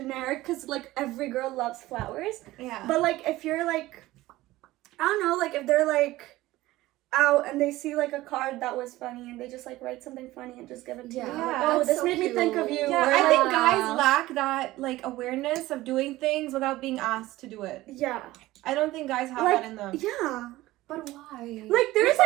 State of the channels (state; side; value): quieter; left; 17.4 dB